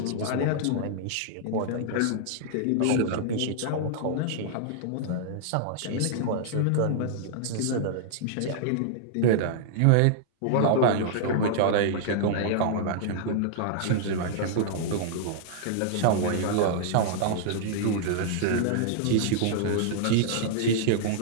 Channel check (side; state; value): both; different; correlation -0.01